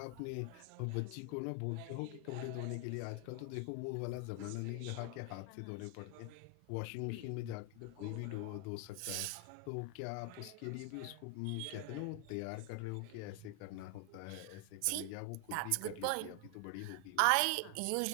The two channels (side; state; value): both; different; correlation 0.00